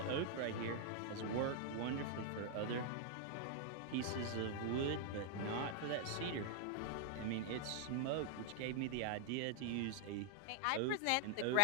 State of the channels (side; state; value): both; different; correlation -0.01